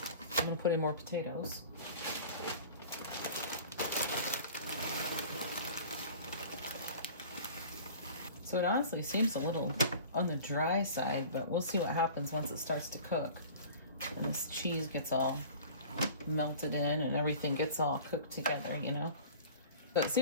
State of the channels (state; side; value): inverted; both; correlation -0.42